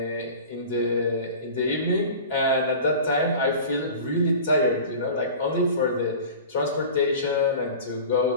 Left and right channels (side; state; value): both; inverted; correlation -0.38